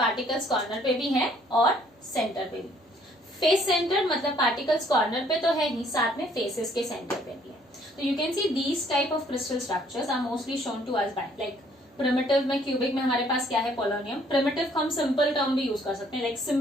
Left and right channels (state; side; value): normal; both; correlation 0.63